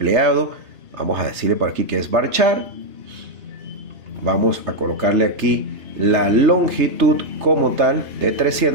Vamos a decirle por aquí que es varchar. Vamos a colocarle aquí la longitud como tal de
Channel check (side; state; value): left; late; 3.3 ms